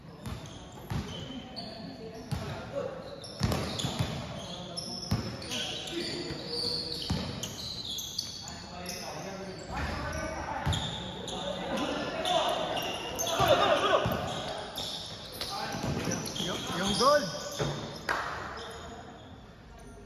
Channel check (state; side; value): identical; both; correlation 1.00